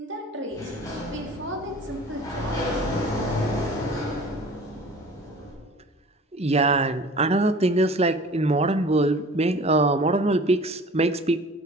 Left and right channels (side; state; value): both; normal; correlation 0.44